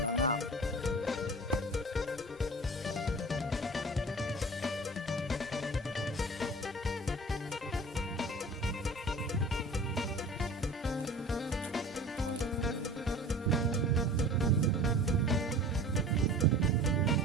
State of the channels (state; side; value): normal; both; correlation 0.40